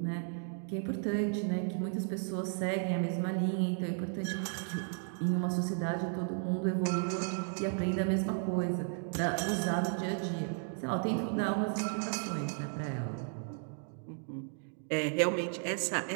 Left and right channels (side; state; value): left; silent; 55 dB below the other